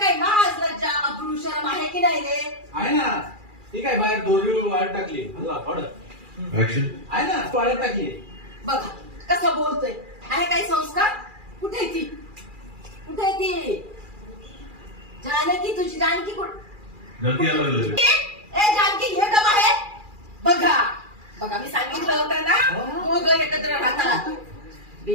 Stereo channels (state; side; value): late; left; 2.4 ms